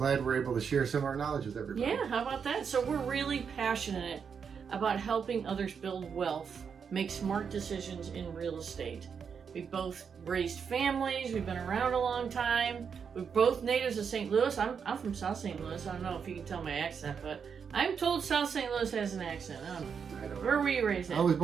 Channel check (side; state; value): left; quieter; 6.6 dB